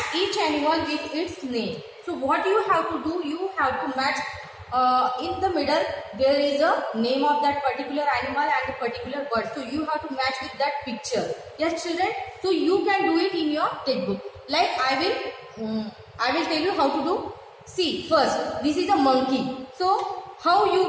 each animal with its name. So what you have to do? You have to match. In the middle there is a name of that particular animal and a particular bird. So you have to match with that picture. Yes, children. So you can do it in your textbook. Like I will tell you how to do. See, first this is a monkey. So how you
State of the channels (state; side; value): identical; both; correlation 1.00